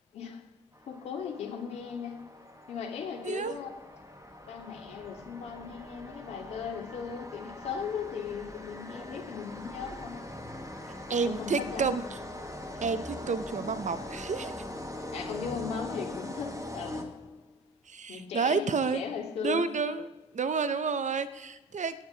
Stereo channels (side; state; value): both; normal; correlation 0.38